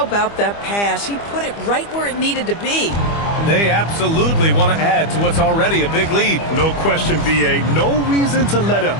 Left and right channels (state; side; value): late; right; 25 ms